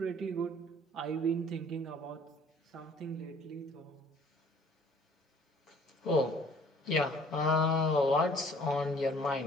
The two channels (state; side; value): normal; both; correlation 0.55